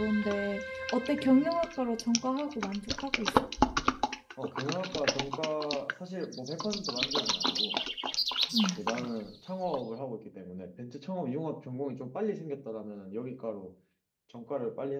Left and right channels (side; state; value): both; identical; correlation 1.00